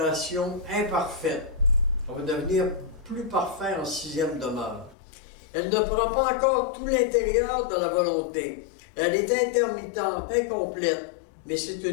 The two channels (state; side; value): drops out; right; at 5.0 s